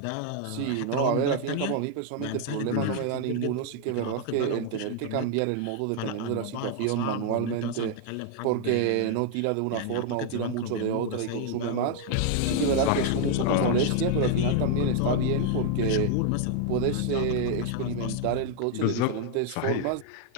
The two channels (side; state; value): both; different; correlation 0.00